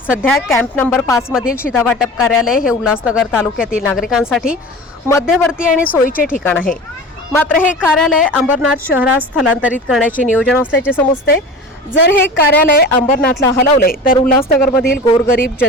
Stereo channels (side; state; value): both; normal; correlation 0.35